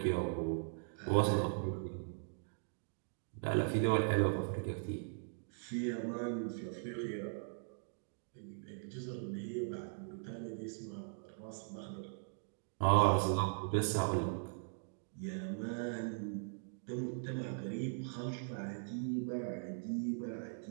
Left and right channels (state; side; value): silent; left; digital silence